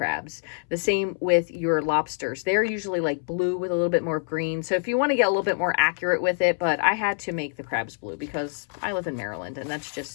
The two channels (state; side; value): silent; right; 61 dB below the other